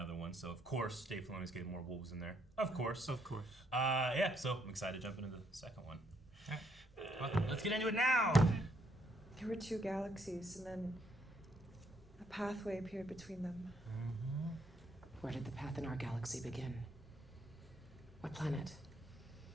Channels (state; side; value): normal; both; correlation 0.72